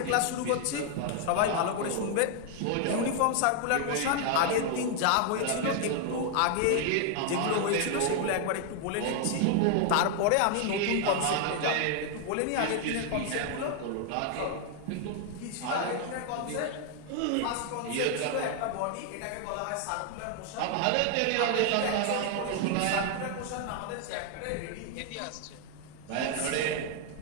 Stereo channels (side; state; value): both; different; correlation 0.00